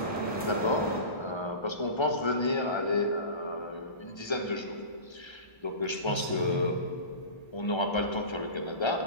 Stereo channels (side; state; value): right; late; 1.3 ms